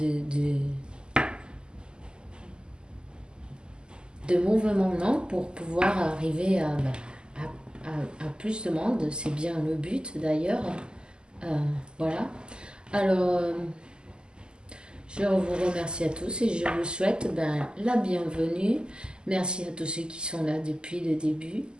de mouvement non, pour pouvoir arriver à plus de monde. C'est bien le but d'ailleurs. Voilà. Alors, je vous remercie à tous et je vous souhaite la bienvenue. Merci à tous ceux qui sont là depuis le début,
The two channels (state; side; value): late; left; 0.047 ms